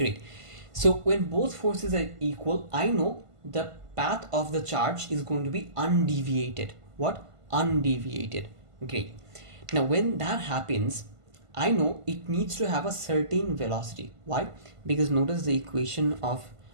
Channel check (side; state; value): left; late; 1.5 ms